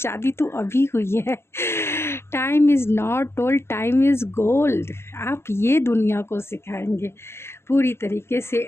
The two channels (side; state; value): right; late; 0.12 ms